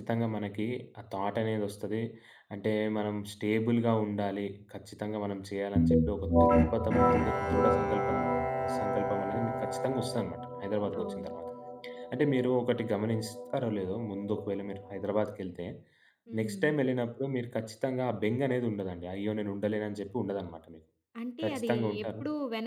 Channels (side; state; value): both; identical; correlation 1.00